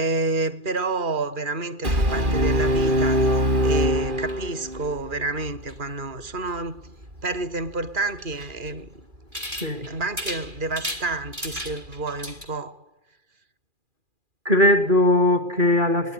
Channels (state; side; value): late; left; 2.4 ms